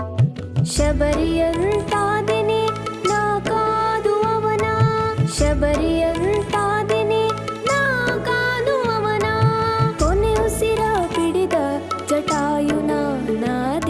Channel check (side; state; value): both; identical; correlation 1.00